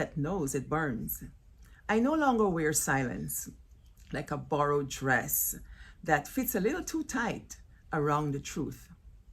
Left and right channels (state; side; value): identical; both; correlation 1.00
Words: knows it burns. I no longer wear silence like a borrowed dress that fits a little too tight around the truth.